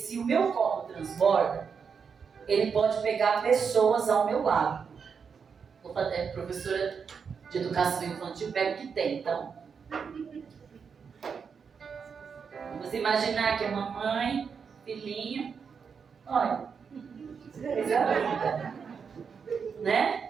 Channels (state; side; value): quieter; left; 6.2 dB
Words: o meu copo transborda, ele pode pegar pessoas ao meu lado. Vou fazer, professora de educação infantil, pega o que tem, então. Vamos imaginar que é mamãe, filhinho, olha,